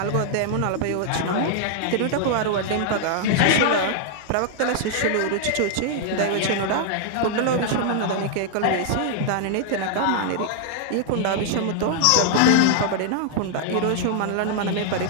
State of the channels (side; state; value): both; different; correlation -0.01